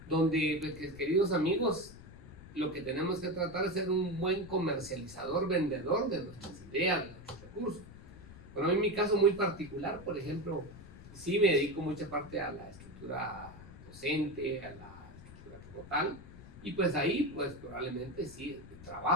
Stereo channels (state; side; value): noise; left; rumble, 17 dB below the sound